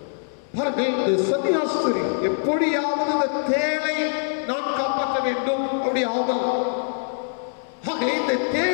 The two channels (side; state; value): right; silent; 63 dB below the other